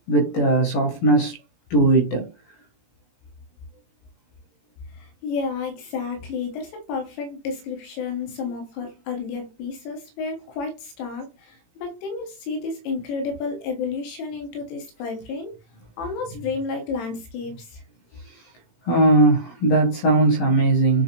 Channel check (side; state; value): right; late; 18 ms